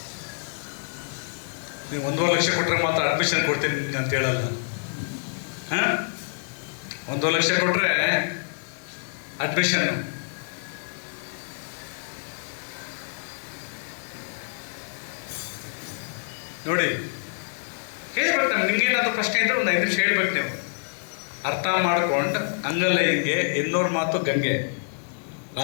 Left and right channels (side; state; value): right; silent; digital silence